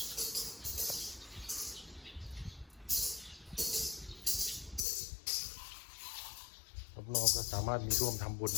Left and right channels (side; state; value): right; drops out; at 4.8 s